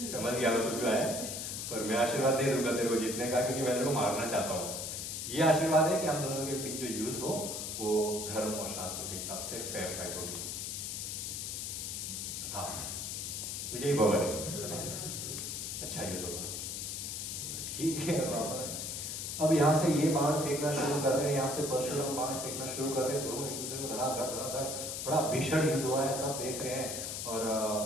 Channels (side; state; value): left; noise; hiss, 4 dB below the sound